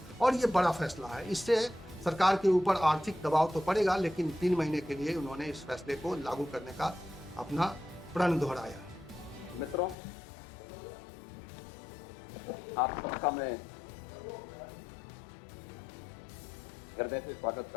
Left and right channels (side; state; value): right; drops out; at 10.0 s